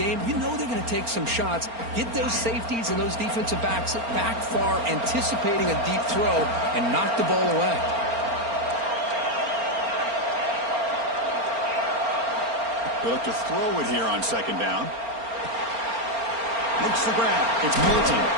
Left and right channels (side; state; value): left; late; 4.3 ms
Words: you know they're going to take some shots. Get those safeties and those defensive backs back far, anticipating a deep throw, and knock the ball away. They look to throw it here on second down. Makes the grab. It's Moulton.